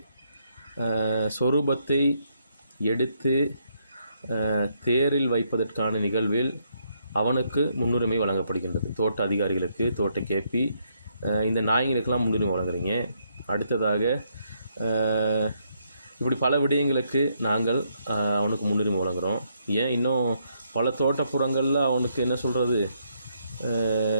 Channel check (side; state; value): both; inverted; correlation -0.74